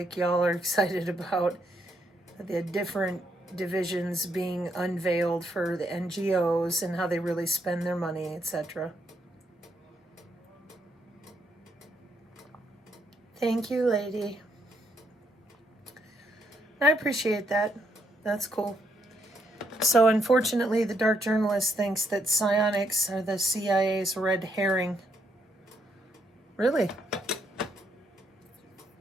y'all are excited about the different divisions being unveiled for the NGOs and how they really spend their money, etc. Thank you, lady. I appreciate that. That's cool. So unfortunately, the dark journalist thinks that psionics are the CIA's red herring. Really?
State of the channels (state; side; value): normal; both; correlation 0.75